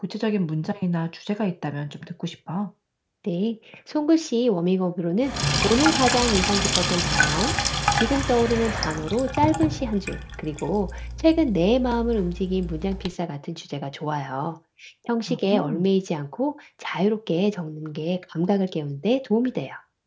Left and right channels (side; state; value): both; identical; correlation 1.00